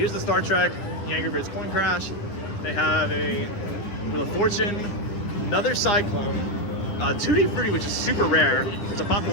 the Star Trek, the Angry Birds Coin Crash. They have a Wheel of Fortune, another Cyclone, 2D Fruity, which is super rare. There's a Pop the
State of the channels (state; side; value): late; right; 10 ms